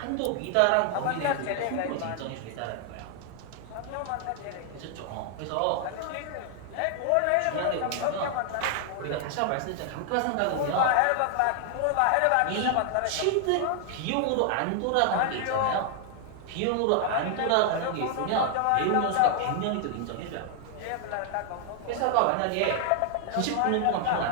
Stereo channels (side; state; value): both; different; correlation 0.00